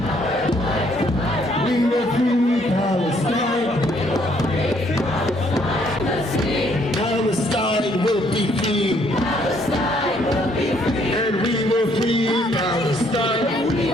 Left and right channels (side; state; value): both; normal; correlation 0.67